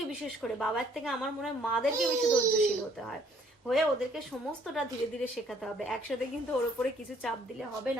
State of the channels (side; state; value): both; normal; correlation 0.62